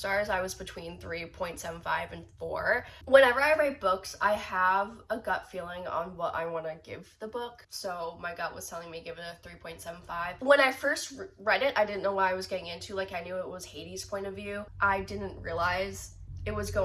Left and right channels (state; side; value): identical; both; correlation 1.00